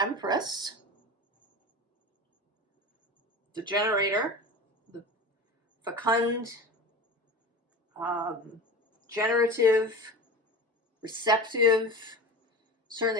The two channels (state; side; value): normal; both; correlation 0.31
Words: Empress, the Generator, the fecund, generative, receptive,